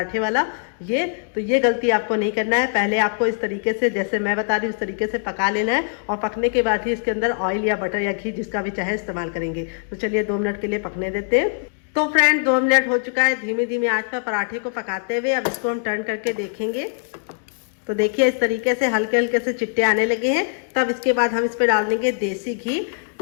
वाला। ये गलती आपको नहीं करना है। पहले आपको इस तरीके से जैसे मैं बता रही हूँ उस तरीके से पका लेना है और पकने के बाद ही इसके अंदर ऑयल या बटर या घी जिसका भी चाहे इस्तेमाल करेंगे। तो चलिए 2 मिनट के लिए पकने देते हैं। तो फ्रेंड 2 मिनट हो चुका है धीमी धीमी आंच पर पराठे को पकाते हुए। अब इसको हम टर्न करके देखेंगे। तो देखिए इस तरीके से हल्के हल्के से चिट्टे आने लगे हैं। तब इसके बाद हम इस पर डाल देंगे देसी घी।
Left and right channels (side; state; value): right; silent; digital silence